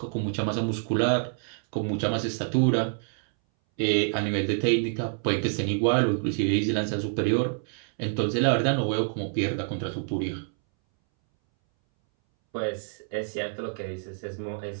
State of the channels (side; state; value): left; silent; 60 dB below the other